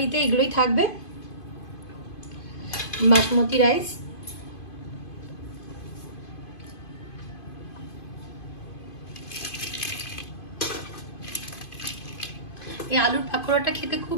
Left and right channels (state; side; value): late; right; 2.5 ms